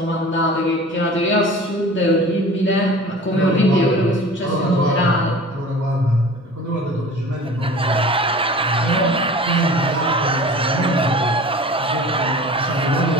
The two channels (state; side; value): normal; both; correlation 0.40